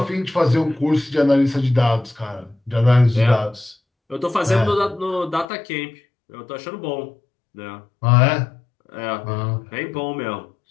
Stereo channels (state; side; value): drops out; right; at 5.5 s